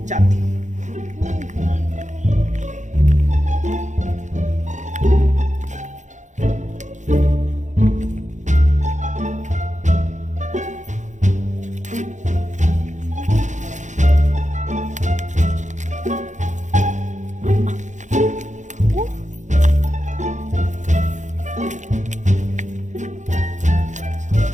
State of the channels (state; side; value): late; left; 0.35 ms